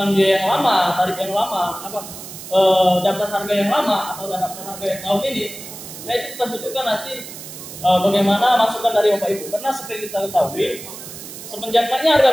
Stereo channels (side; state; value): right; noise; hiss, 13 dB below the sound